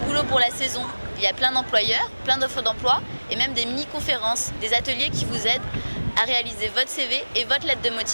boulot pour la saison. Il y a plein d'employeurs, plein d'offres d'emploi et même des mini-conférences, des ateliers qui vous aident à réaliser votre CV et votre lettre de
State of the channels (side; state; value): both; inverted; correlation -1.00